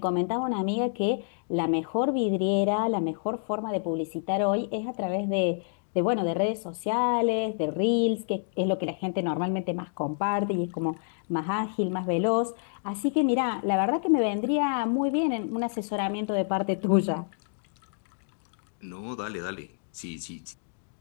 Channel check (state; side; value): silent; right; digital silence